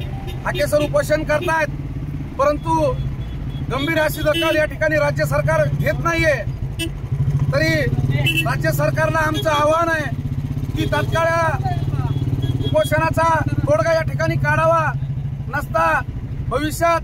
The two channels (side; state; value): both; identical; correlation 1.00